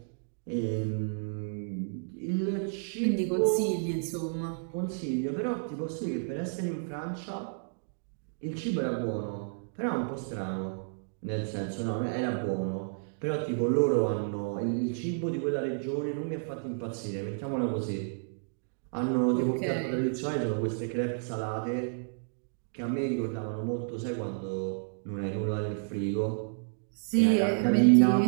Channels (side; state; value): left; silent; digital silence